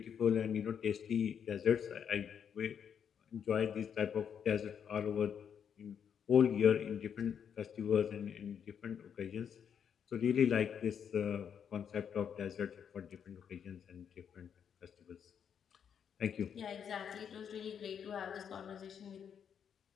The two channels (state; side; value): quieter; right; 7.9 dB